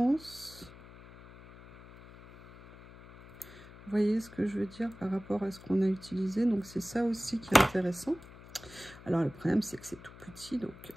Vous voyez ce que je veux dire par rapport à ce qu'on a utilisé. Donc, c'est ça aussi qui est intéressant. Alors, le problème, c'est que c'est tout petit. Donc,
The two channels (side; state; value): left; noise; hum, 19 dB below the sound